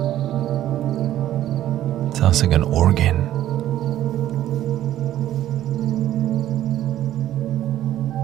Sounds like an organ.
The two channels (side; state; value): left; quieter; 12.8 dB